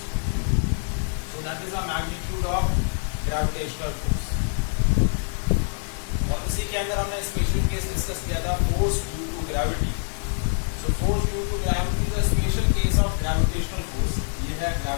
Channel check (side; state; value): right; silent; 62 dB below the other